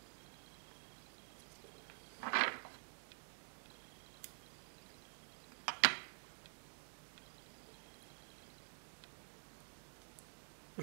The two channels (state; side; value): silent; left; digital silence